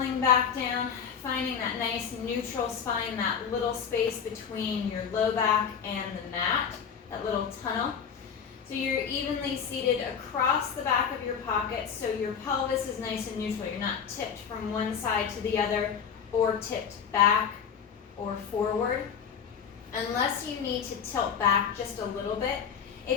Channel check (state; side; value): quieter; right; 7.3 dB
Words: back down, finding that nice neutral spine, that little space between your low back and the mat, that little tunnel. So you're evenly seated across the back of your pocket, so your pelvis is nice and neutral. You're not tipped from one side to the other or tipped back or forward. Unless you need to tilt back just a little bit.